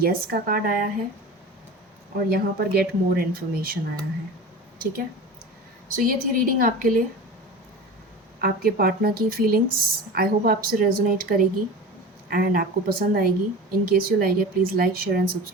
येस का कार्ड आया है और यहाँ पर गेट मोर इन्फॉर्मेशन आया है। ठीक है, सो ये थी रीडिंग आपके लिए। आपके पार्टनर की फीलिंग्स आई होप आपसे रेजोनेट करेगी एंड आपको पसंद आएगी। In case you like it, please like, share and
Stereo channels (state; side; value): normal; both; correlation 0.33